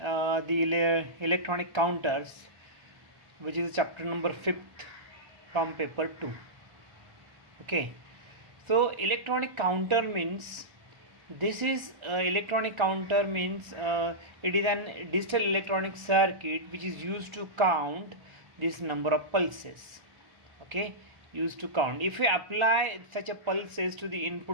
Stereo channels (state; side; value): late; left; 1.4 ms